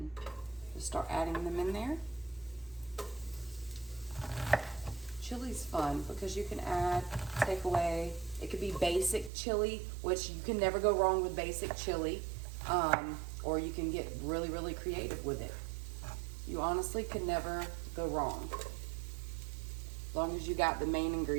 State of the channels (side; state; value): left; drops out; at 9.3 s